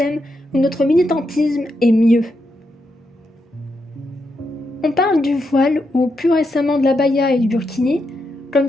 ou notre militantisme est mieux. On parle du voile ou plus récemment de l'abaya et du burkini comme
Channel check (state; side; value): normal; both; correlation 0.83